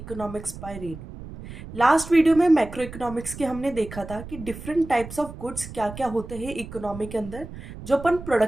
by Renu. Last video में macro economics के हमने देखा था कि डिफरेंट टाइप्स ऑफ गुड्स क्या क्या होते हैं इकोनॉमी के अंदर जो अपन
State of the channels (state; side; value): noise; right; rumble, 13 dB below the sound